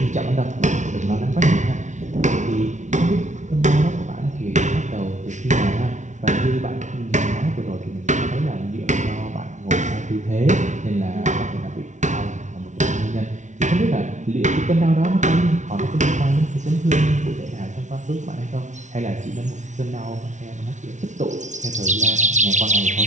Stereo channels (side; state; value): left; late; 0.35 ms